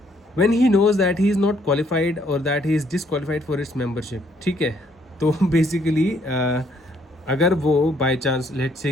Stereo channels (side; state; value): both; normal; correlation 0.67